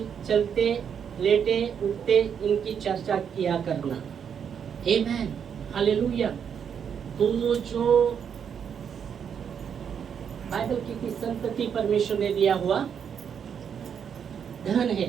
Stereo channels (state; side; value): quieter; left; 7.6 dB